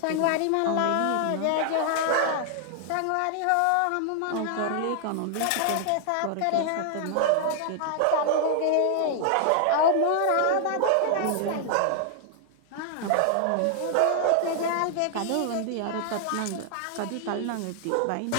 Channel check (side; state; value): both; different; correlation 0.00